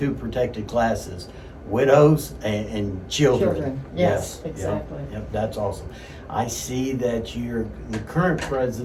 protected classes, widows and children. Yes, exactly. Yep, that's awesome. I see that you're the current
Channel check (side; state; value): both; identical; correlation 1.00